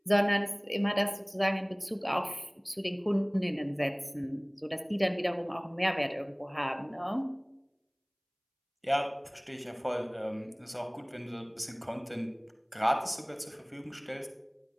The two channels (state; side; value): identical; both; correlation 1.00